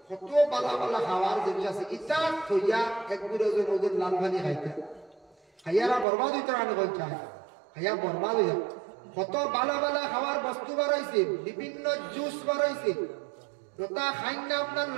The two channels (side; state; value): left; drops out; at 6.1 s